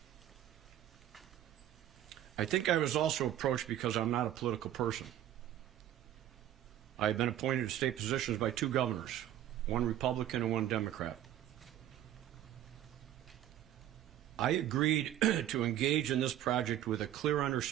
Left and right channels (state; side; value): quieter; left; 12.1 dB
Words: I think I was also approached because I'm not a political person. I have been appointed to state positions by two governors, one Republican and one Democrat. I agreed to engage in this project with a clear